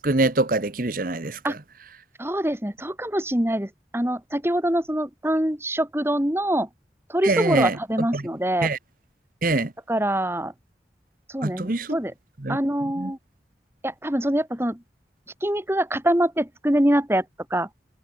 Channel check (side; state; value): both; normal; correlation 0.74